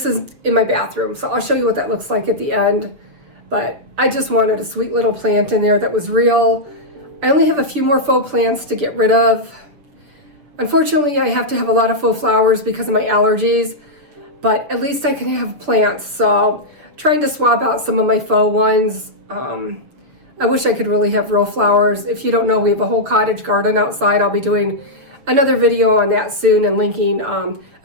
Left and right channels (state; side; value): late; left; 7.1 ms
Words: is in my bathroom. So I'll show you what that looks like at the end. But I just wanted a sweet little plant in there that was real. I only have a few more faux plants to get rid of. Unfortunately, I have to have a lot of faux flowers because of my allergies, but at least I can have plants. So trying to swap out some of my faux ones. I wish I could really have real flowers. If you don't know, we have a whole cottage garden outside. I'll be doing another video on that soon and linking